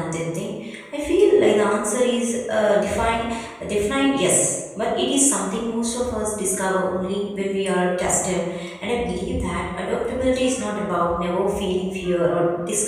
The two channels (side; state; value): both; identical; correlation 1.00